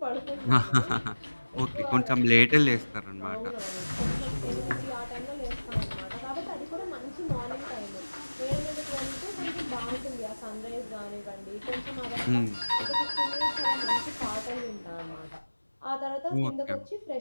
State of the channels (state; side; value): inverted; both; correlation -1.00